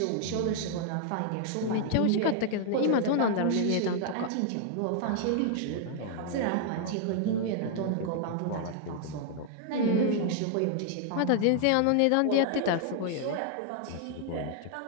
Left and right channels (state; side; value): different; both; correlation 0.00